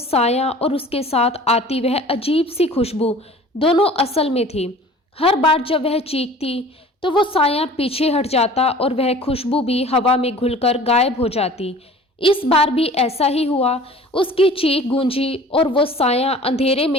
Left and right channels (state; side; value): normal; both; correlation 0.45